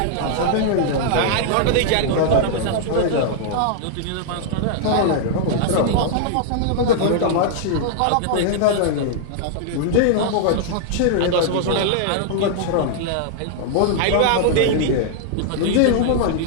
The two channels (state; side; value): different; both; correlation -0.01